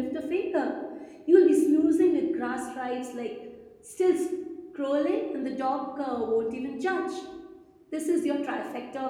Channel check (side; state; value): both; identical; correlation 1.00